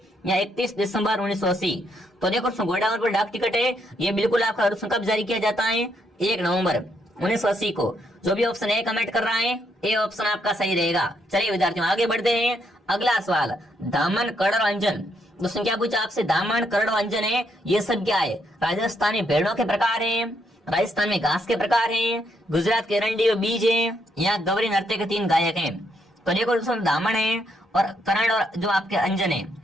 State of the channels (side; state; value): both; normal; correlation 0.75